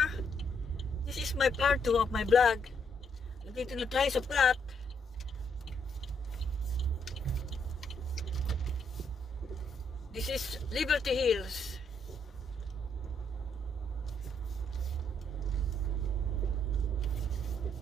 This is my part 2 of my vlog. Nandito na tayo sa plot. This is Liberty Hills.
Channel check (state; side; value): normal; both; correlation 0.73